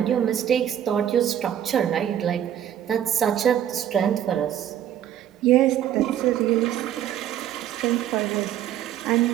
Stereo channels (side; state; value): left; quieter; 10.6 dB